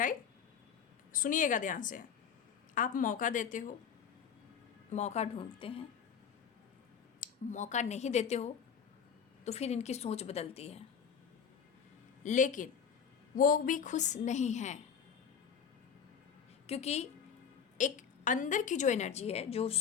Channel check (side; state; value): right; quieter; 7.3 dB